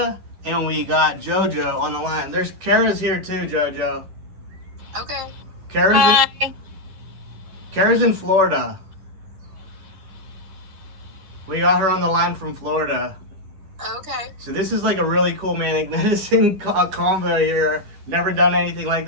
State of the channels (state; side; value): late; left; 10 ms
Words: and we got JoJo on the line. Cara's here too, JoJo. Okay. Cara's in Florida. We got her on the line from Florida. Okay. So this is like a really cool Manic Medicine combo here. never done anything like